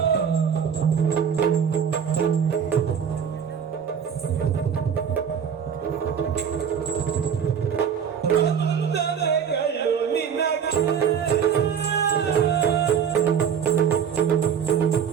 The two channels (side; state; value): left; quieter; 7.5 dB